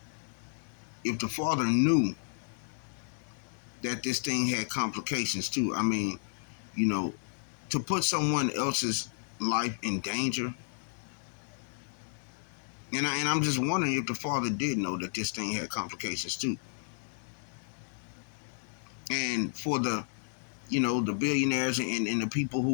if the father knew that this thing had complications too. I mean, you know, to put someone else's life in danger. And I'm just wondering if the father did know that this thing had complications too. And for the billionaires and the people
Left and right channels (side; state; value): right; silent; digital silence